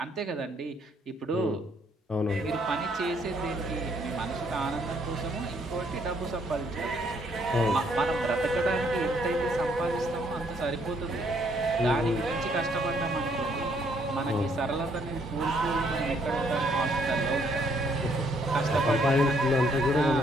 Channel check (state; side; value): normal; both; correlation 0.68